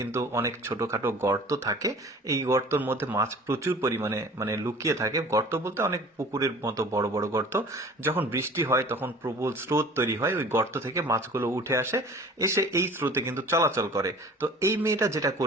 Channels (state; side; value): normal; both; correlation 0.45